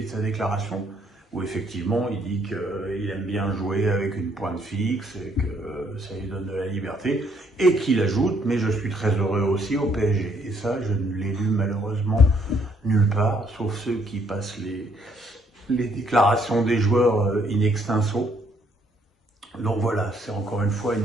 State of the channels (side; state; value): both; normal; correlation 0.68